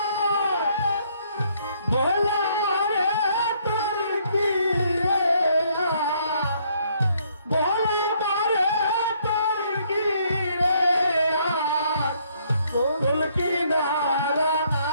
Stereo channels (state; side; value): inverted; both; correlation -0.67